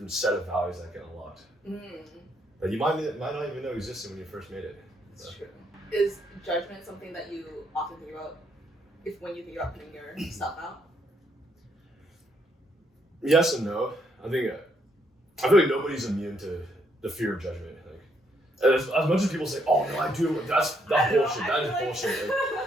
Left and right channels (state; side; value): normal; both; correlation 0.73